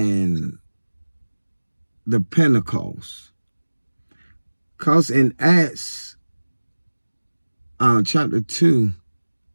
the Pentecost. Because in Acts chapter 2,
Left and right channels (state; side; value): inverted; both; correlation -1.00